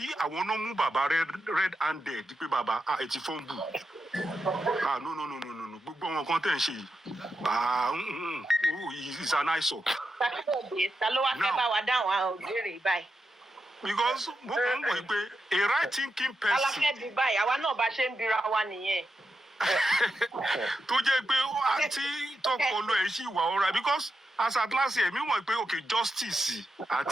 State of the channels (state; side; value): normal; both; correlation 0.87